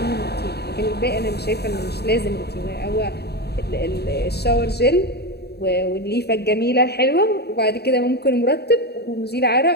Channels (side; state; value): right; late; 0.47 ms